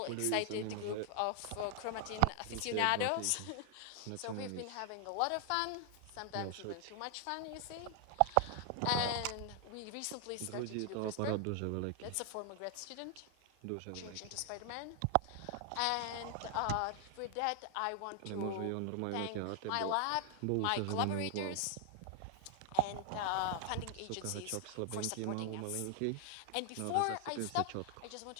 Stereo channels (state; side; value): different; both; correlation 0.00